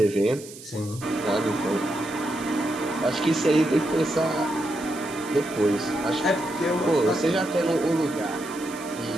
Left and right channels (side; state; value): right; noise; hiss, 16 dB below the sound